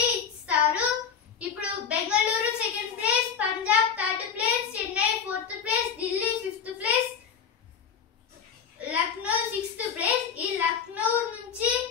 ఇస్తారు. ఇప్పుడు Bengaluru 2nd place, Punjab 3rd place, Chennai 4th place, Delhi 5th place, Lucknow 6th place. ఈ లక్నో నుంచి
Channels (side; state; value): right; quieter; 7.2 dB